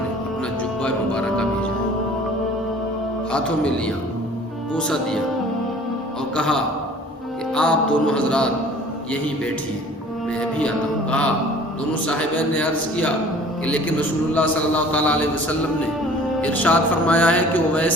اپنا جبہ مبارکہ بھیجا. ہاتھوں میں لیا، بوسہ دیا اور کہا کہ آپ دونوں حضرات یہیں بیٹھیے، میں بھی آتا ہوں. کہا دونوں صاحبین نے عرض کیا کہ لیکن رسول اللہ صلی اللہ تعالیٰ علیہ وسلم نے ارشاد فرمایا ہے کہ اویس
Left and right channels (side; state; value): both; normal; correlation 0.49